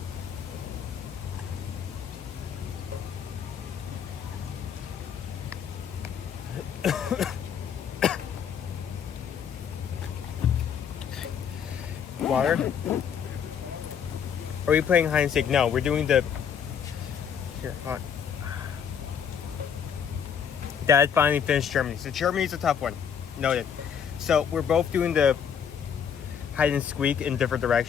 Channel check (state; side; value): quieter; right; 7.7 dB